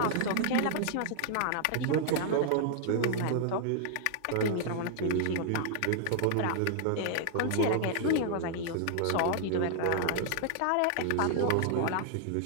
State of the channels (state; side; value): different; both; correlation -0.01